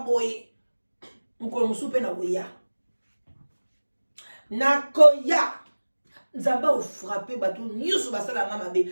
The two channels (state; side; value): inverted; both; correlation -1.00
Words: Mukolo musupe na boya. Nakoya. Nzamba o frappé batu nyusu basala nga mabe.